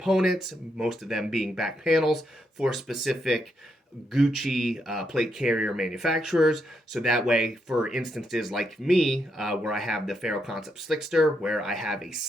most of them being back panels for specific Gucci plate carrier manufacturers. So that way, for instances like me, where I have the Ferro Concepts Slickster, where I have a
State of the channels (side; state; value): both; normal; correlation 0.80